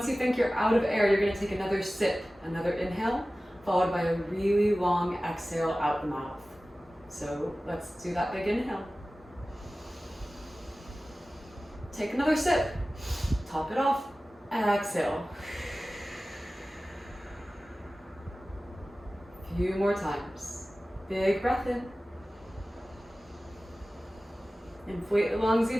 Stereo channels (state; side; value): normal; both; correlation 0.96